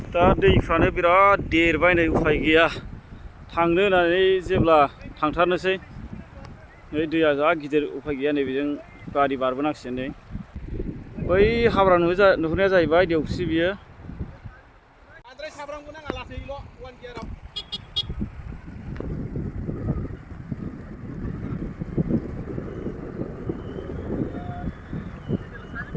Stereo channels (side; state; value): both; identical; correlation 1.00